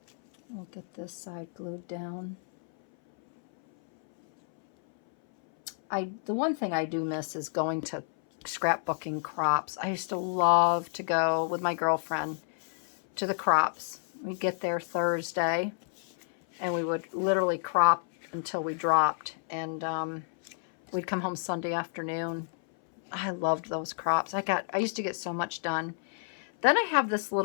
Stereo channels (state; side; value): silent; right; 58 dB below the other